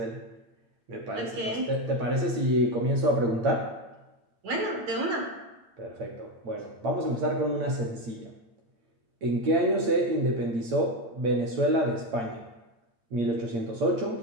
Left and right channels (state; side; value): late; left; 8.8 ms